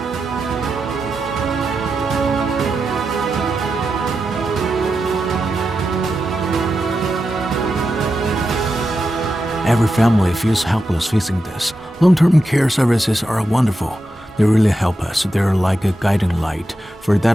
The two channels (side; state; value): both; normal; correlation 0.88